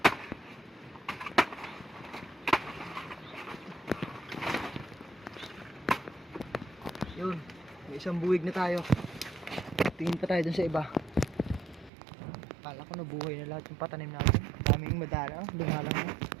Yun, may isang buwig na tayo. Tingin pa tayo dun sa iba. Kala ko nabuhay na lahat yung patanim natin. Daming madalang, dumalang na.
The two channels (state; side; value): drops out; left; at 11.9 s